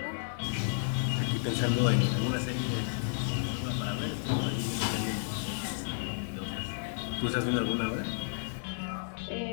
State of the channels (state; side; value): silent; right; 56 dB below the other